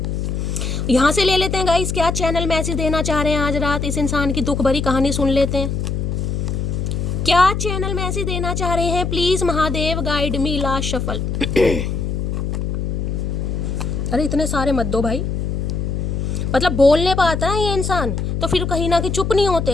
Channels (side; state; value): left; noise; hum, 2 dB below the sound